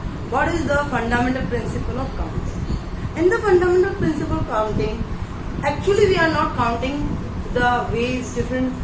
what is the fundamental principle of counting. In the fundamental principle of counting, actually we are not counting the ways, different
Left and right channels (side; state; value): both; identical; correlation 1.00